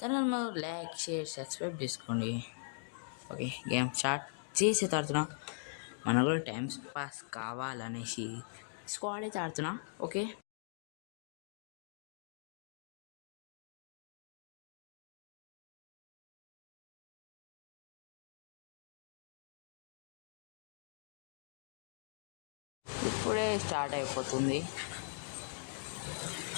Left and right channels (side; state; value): right; silent; digital silence